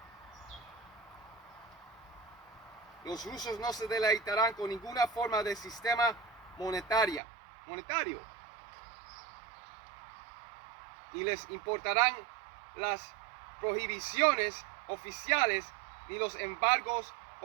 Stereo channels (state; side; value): drops out; left; at 7.2 s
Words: Los rusos no se deleitarán con ninguna forma de sistema monetaria. monetario. Ni les importarán las prohibiciones oficiales, ni los embargos